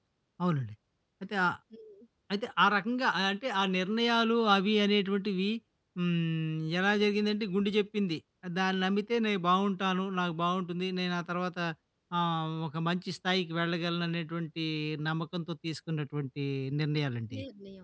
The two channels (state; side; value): identical; both; correlation 1.00